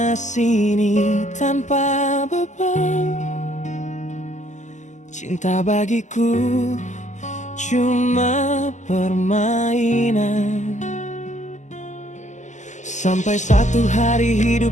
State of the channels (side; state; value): right; late; 0.34 ms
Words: sini tanpa beban. Cinta bagiku cuma permainan. Sampai satu hari